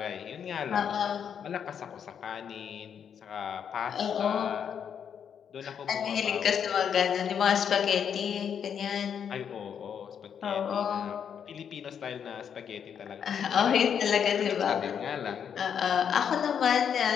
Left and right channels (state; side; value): quieter; right; 7.9 dB